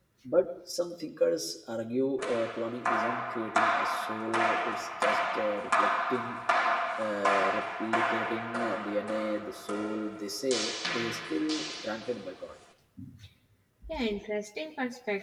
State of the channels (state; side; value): identical; both; correlation 1.00